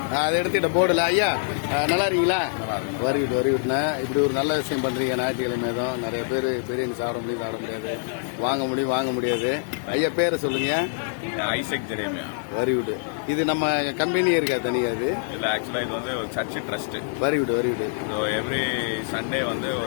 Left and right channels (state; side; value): silent; right; 62 dB below the other